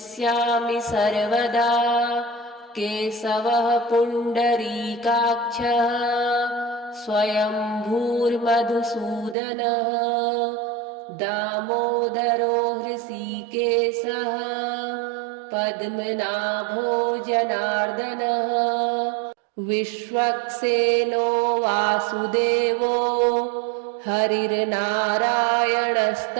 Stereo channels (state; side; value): drops out; left; at 9.3 s